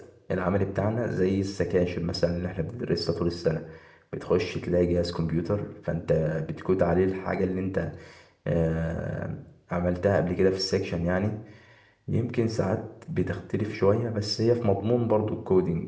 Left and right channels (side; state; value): both; identical; correlation 1.00